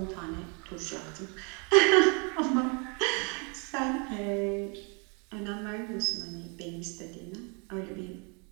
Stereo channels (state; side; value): quieter; left; 35.0 dB